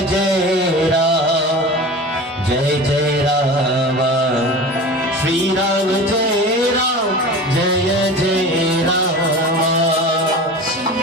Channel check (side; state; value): both; normal; correlation 0.34